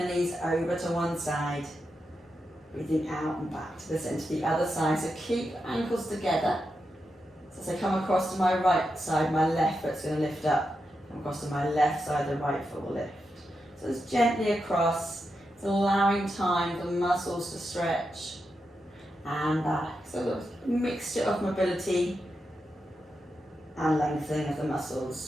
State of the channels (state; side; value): normal; both; correlation 0.87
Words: knees over to one side. Breathing out and back to the centre, the other side. So keep ankles together. So as I come across to my right side, my left foot's going to lift up. Come across to my left side, the right foot will lift. So it's gently across. It's allowing time for the muscles to stretch and back. So a mixture of mobility and lengthening of the